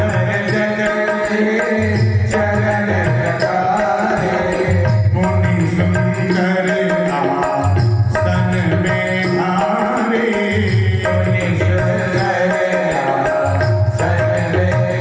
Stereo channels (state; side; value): identical; both; correlation 1.00